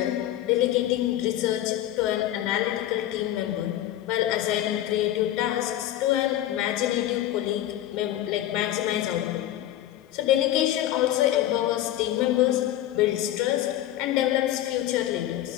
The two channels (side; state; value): right; quieter; 13.2 dB